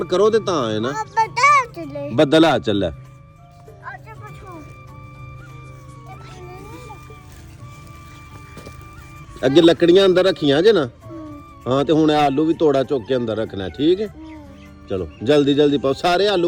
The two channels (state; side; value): identical; both; correlation 1.00